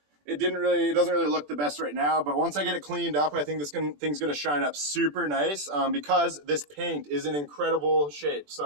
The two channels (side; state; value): left; late; 21 ms